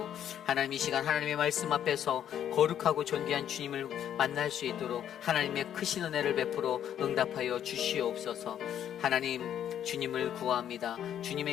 하나님 이 시간 하나님의 말씀 앞에서 거룩하고 존귀한 주님을 만날 수 있도록 하나님의 크신 은혜를 베풀어 응답하여 주시옵소서. 하나님 주님을 구합니다.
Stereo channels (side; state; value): right; quieter; 10.0 dB